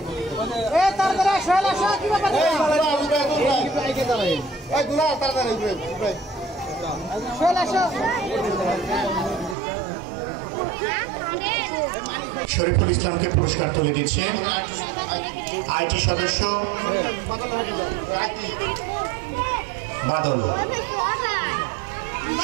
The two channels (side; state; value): left; drops out; at 9.6 s